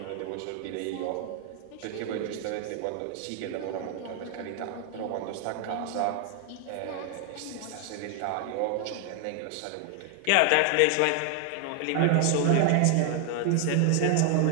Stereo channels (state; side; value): different; both; correlation 0.00